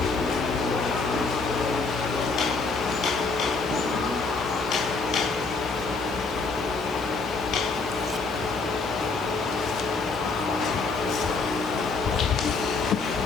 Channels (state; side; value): quieter; right; 4.1 dB